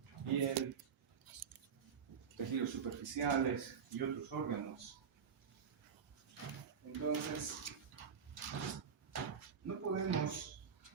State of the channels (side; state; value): left; quieter; 6.8 dB